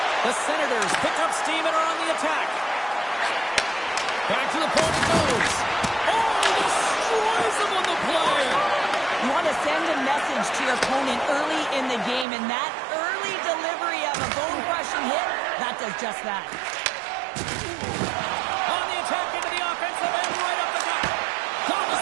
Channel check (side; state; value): left; drops out; at 12.2 s